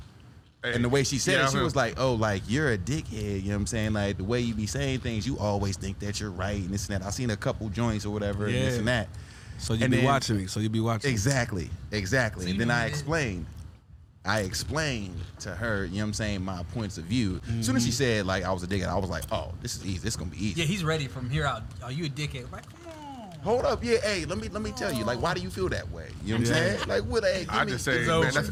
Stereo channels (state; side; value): identical; both; correlation 1.00